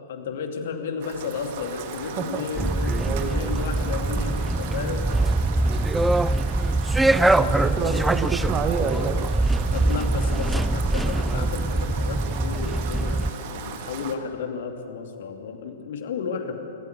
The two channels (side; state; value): both; normal; correlation 0.71